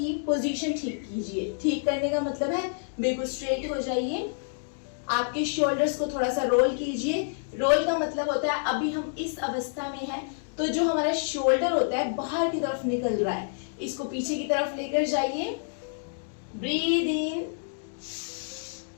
पोजीशन ठीक कीजिए। ठीक करने का मतलब है बिल्कुल स्ट्रेट हो जाइए, आपके शोल्डर्स को थोड़ा सा रोल कीजिए। रोल का मतलब होता है अभी हम इस अवस्था में हैं तो जो हमारा शोल्डर होता है बाहर की तरफ निकल रहा है, इसको पीछे की तरफ लेकर जाइए। Breathe in,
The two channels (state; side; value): silent; right; digital silence